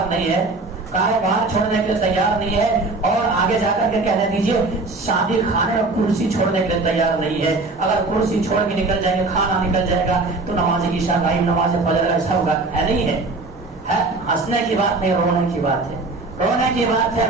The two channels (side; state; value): left; quieter; 3.4 dB